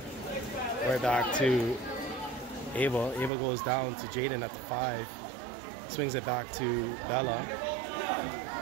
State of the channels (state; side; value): drops out; left; at 3.3 s